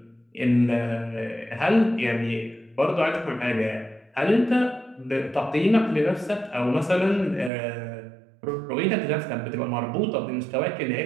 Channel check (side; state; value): left; drops out; at 7.5 s